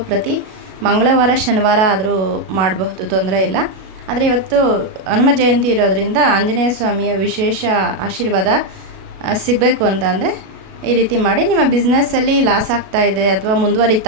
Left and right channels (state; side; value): late; left; 37 ms